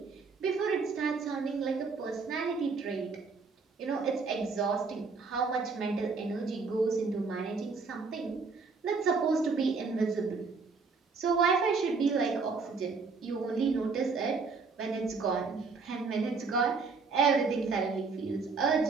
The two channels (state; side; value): quieter; left; 4.6 dB